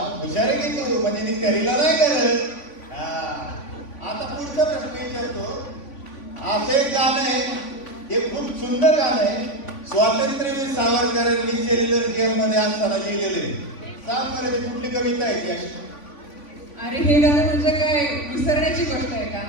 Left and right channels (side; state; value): right; late; 3.5 ms